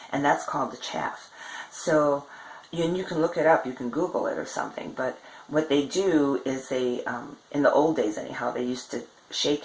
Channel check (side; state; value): both; identical; correlation 1.00